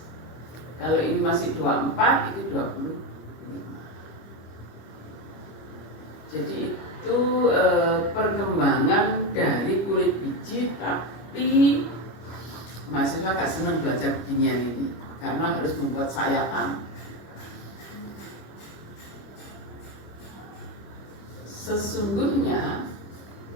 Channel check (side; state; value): right; late; 25 ms